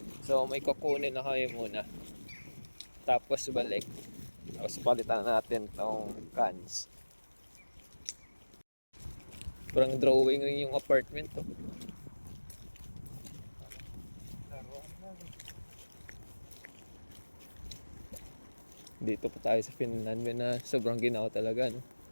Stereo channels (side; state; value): both; inverted; correlation -1.00